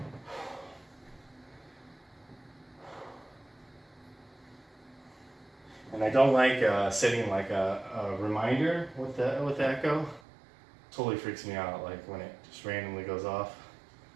And I don't like setting like a reminder with the Echo. Totally freaks me out, like when it just randomly goes off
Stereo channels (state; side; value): drops out; left; at 10.2 s